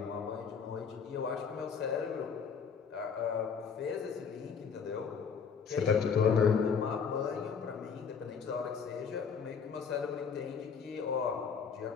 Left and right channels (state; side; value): quieter; right; 6.3 dB